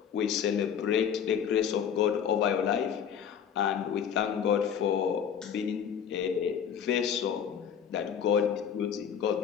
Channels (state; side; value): quieter; right; 8.1 dB